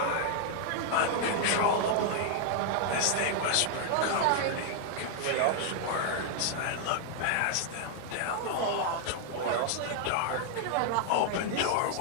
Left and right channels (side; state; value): both; different; correlation 0.00